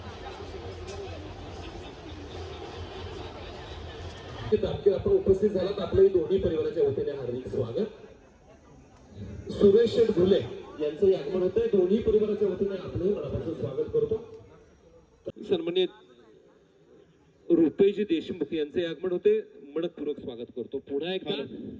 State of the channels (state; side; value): identical; both; correlation 1.00